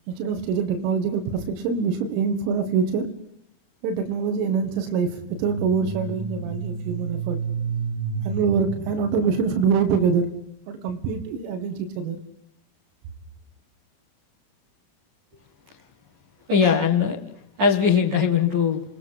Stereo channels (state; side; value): late; left; 23 ms